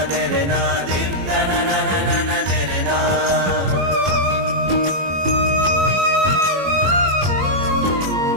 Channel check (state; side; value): late; left; 21 ms